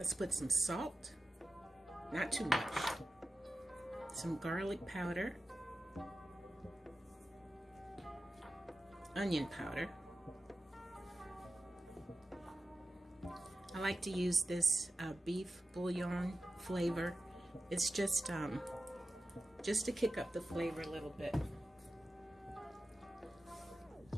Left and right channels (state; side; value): normal; both; correlation 0.93